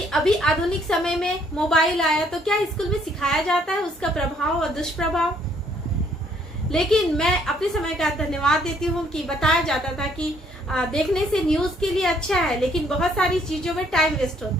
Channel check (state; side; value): normal; both; correlation 0.65